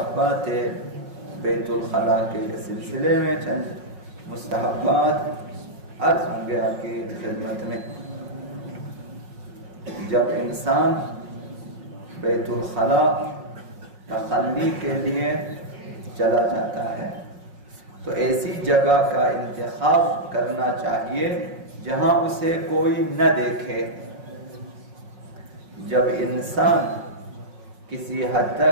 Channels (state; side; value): late; left; 5.5 ms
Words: بیت الخلا کے سلسلے میں چند مستحبات عرض ہوں گے آپ کی خدمت میں۔ جب انسان بیت الخلا تخلی کے لیے چلا جاتا ہے تو ایسی جگہ کا انتخاب کرنا چاہیے جہاں اسے کوئی نہ دیکھے۔ جب انسان کسی حد